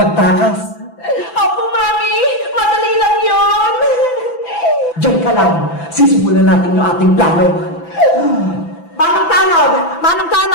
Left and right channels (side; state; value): right; late; 6.0 ms